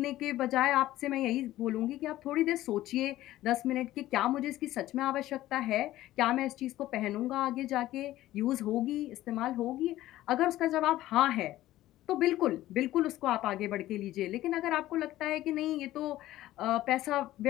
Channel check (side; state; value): right; quieter; 15.1 dB